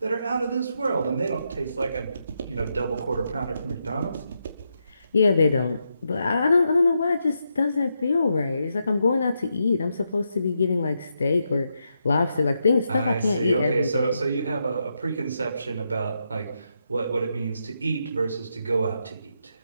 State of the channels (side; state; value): both; inverted; correlation -0.82